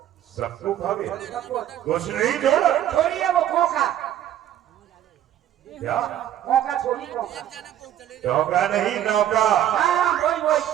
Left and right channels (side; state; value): left; quieter; 11.4 dB